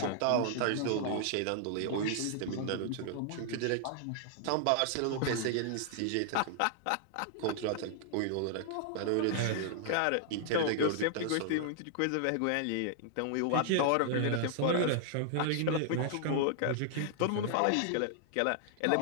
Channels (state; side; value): different; both; correlation -0.01